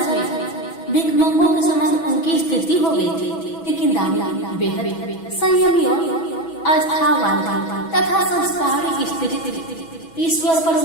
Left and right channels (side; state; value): right; late; 6.1 ms